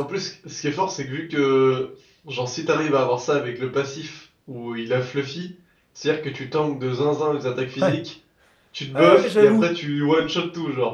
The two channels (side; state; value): both; identical; correlation 1.00